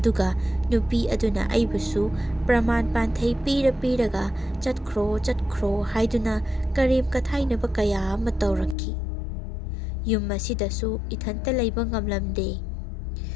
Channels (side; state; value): right; drops out; at 8.8 s